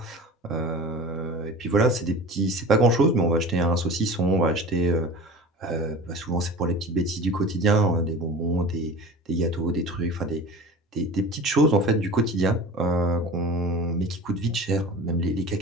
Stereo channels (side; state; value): both; normal; correlation 0.36